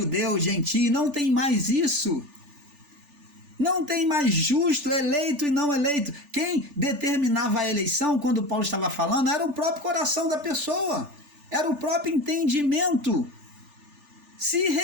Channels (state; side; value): late; left; 3.4 ms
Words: gentio, não tem mais isso. Não tem mais justo, eleito e não eleito. Quem determinava a eleição, quando Paulo estava falando, era o próprio coração da pessoa. Era o próprio entendimento. Se